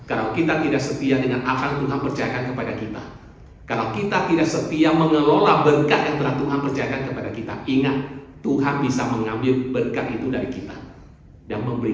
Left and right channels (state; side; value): identical; both; correlation 1.00